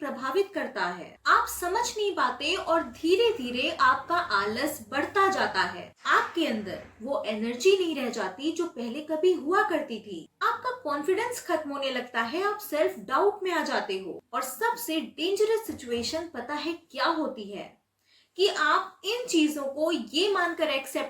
करता है। आप समझ नहीं पाते और धीरे धीरे आपका आलस बढ़ता जाता है। आपके अंदर वो एनर्जी नहीं रह जाती जो पहले कभी हुआ करती थी। आपका कॉन्फिडेंस खत्म होने लगता है, आप सेल्फ डाउट में आ जाते हो। और सबसे डेंजरस सिचुएशन पता है क्या होती है? कि आप इन चीजों को ये मानकर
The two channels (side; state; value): both; identical; correlation 1.00